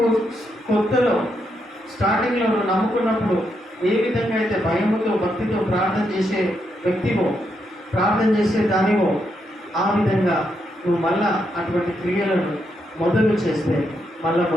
కొత్తలో స్టార్టింగ్లో నువ్వు నమ్ముకున్నప్పుడు ఏ విధంగా అయితే భయముతో భక్తితో ప్రార్థన చేసే వ్యక్తివో, ప్రార్థన చేసే దానివో, ఆ విధంగా నువ్వు మళ్ళా అటువంటి క్రియలను మొదలు చేస్తే మళ్ళా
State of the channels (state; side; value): normal; both; correlation 0.80